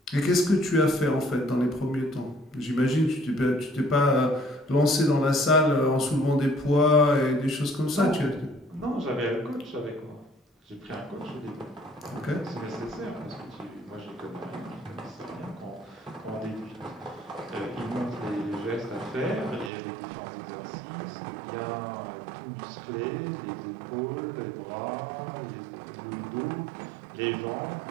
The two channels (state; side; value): drops out; left; at 19.7 s